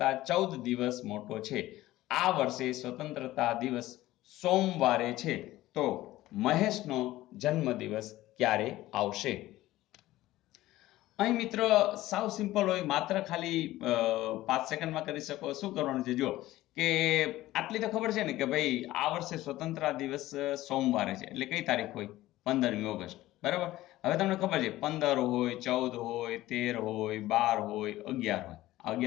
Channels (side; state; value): right; quieter; 16.3 dB